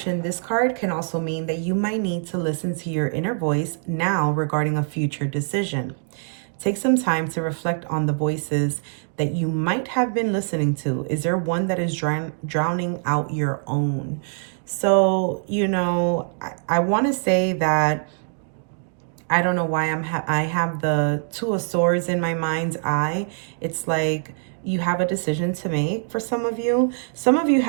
this card can also mean that you might need to listen to your inner voice now regarding a future decision. Take some time to reflect on the voices that you might have been listening to. Is there one that is drowning out your own? So, you know, I want to say that I don't know why I have the 2 of Swords in my mind's eye. It's like you have a decision to make for some of you. Some of you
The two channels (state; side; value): silent; left; digital silence